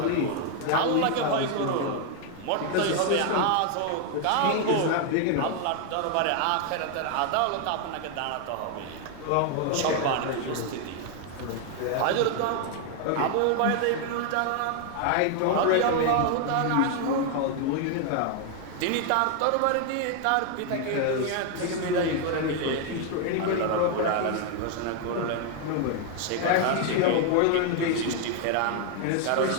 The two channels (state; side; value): different; both; correlation 0.00